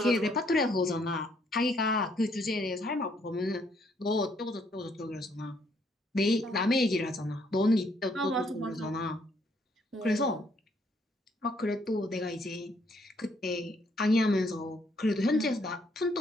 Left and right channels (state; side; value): normal; both; correlation 0.69